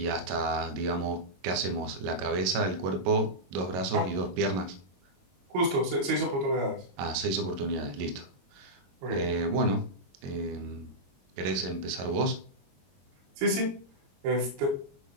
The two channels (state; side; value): late; left; 22 ms